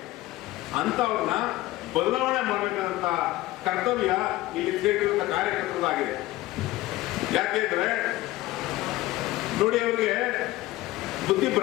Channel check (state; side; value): quieter; right; 17.5 dB